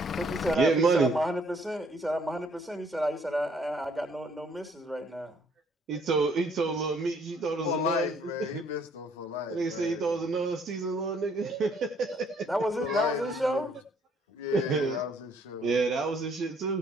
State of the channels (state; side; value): normal; both; correlation 0.64